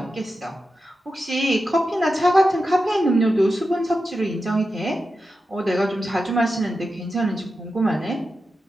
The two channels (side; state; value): both; normal; correlation 0.91